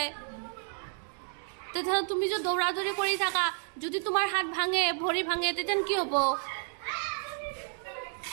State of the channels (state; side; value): silent; left; 57 dB below the other